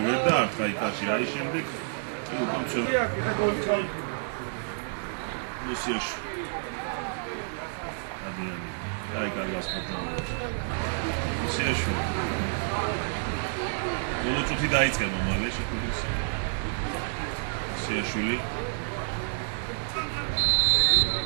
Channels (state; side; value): silent; left; digital silence